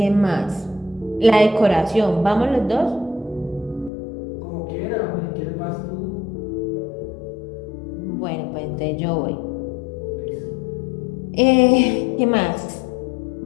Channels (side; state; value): right; drops out; at 3.9 s